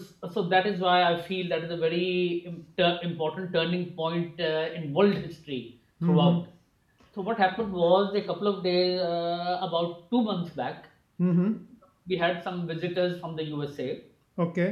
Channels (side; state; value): both; identical; correlation 1.00